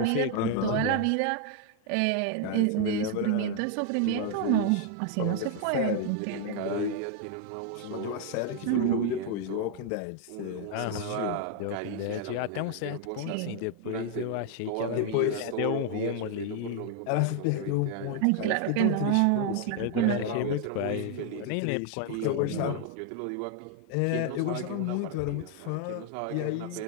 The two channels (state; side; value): different; both; correlation 0.00